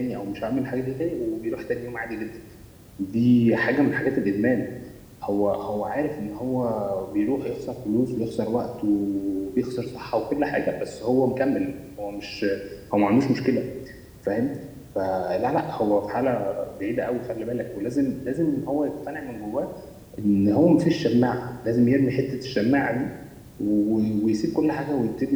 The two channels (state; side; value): identical; both; correlation 1.00